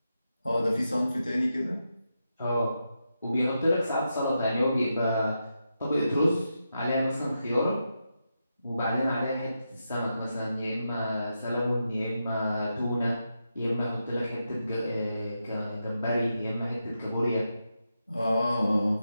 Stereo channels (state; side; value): inverted; both; correlation -0.87